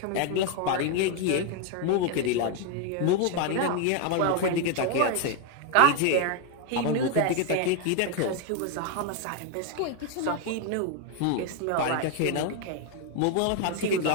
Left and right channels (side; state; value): both; different; correlation 0.01